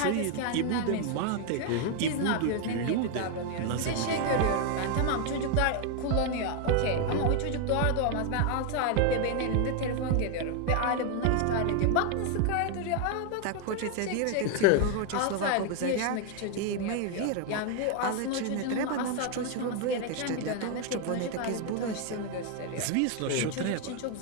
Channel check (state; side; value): different; both; correlation 0.01